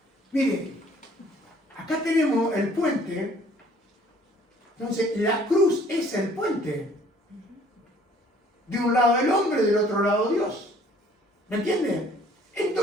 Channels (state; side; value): normal; both; correlation 0.57